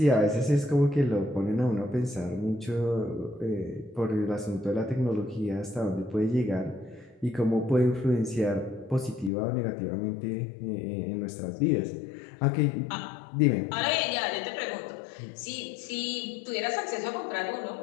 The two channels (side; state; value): right; drops out; at 9.3 s